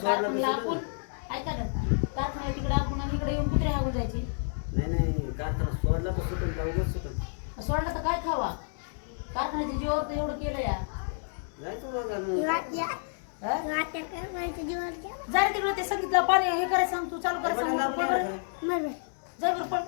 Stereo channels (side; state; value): right; silent; digital silence